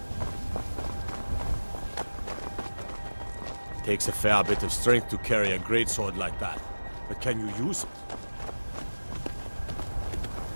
Takes a fair bit of strength to carry a greatsword like that. But can you use it?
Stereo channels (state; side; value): inverted; both; correlation -1.00